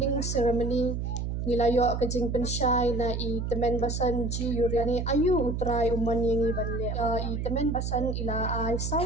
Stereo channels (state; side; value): noise; right; hum, 2 dB below the sound